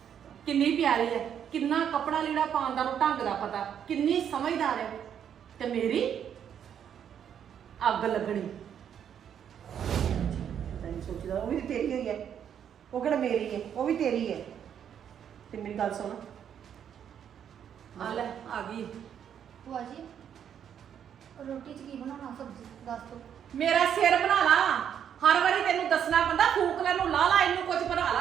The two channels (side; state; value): left; quieter; 8.8 dB